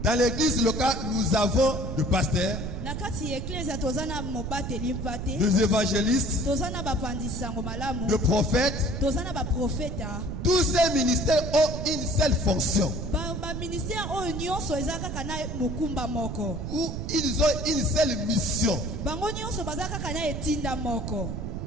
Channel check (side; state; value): right; noise; rumble, 4 dB below the sound